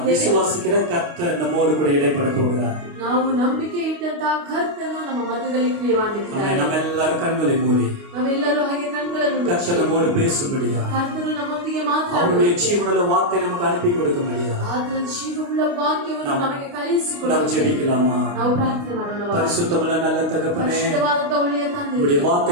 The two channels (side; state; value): left; late; 29 ms